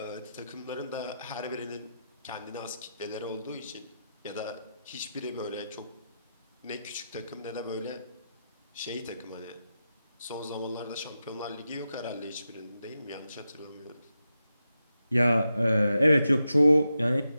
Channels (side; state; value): both; inverted; correlation -0.89